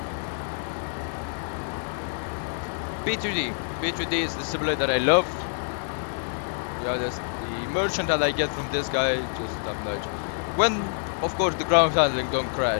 P3D is the simulator I love. Yeah, that's the merchant that I get from this guy, just top notch. When, of course, the ground handling don't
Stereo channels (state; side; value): silent; right; digital silence